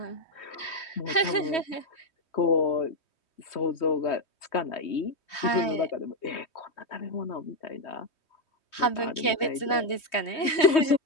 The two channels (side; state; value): right; late; 3.2 ms